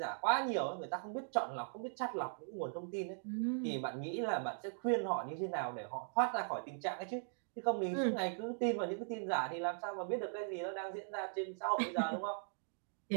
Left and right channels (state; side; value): silent; left; digital silence